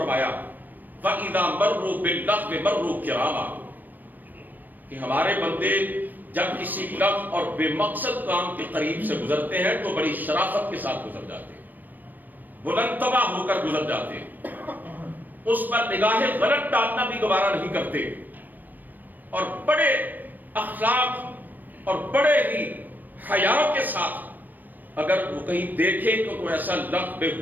وَإِذَا مَرُّوا بِاللَّغْوِ مَرُّوا كِرَامًا، کہ ہمارے بندے جب کسی لغو اور بے مقصد کام کے قریب سے گزرتے ہیں تو بڑی شرافت کے ساتھ گزر جاتے ہیں، بلند طبع ہو کر گزر جاتے ہیں، اس پر نگاہ غلط ڈالنا بھی گوارا نہیں کرتے، اور بڑے اخلاق اور بڑے ہی حیا کے ساتھ اگر وہ کہیں دیکھیں کہ کوئی ایسا لغو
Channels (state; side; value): late; left; 0.085 ms